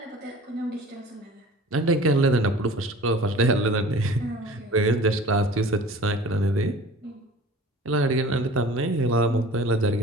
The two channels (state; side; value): normal; both; correlation 0.43